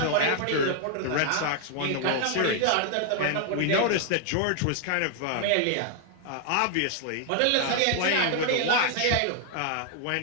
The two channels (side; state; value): both; different; correlation 0.00